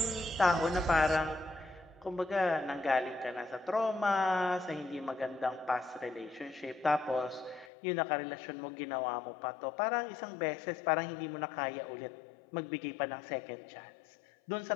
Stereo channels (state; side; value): drops out; right; at 7.7 s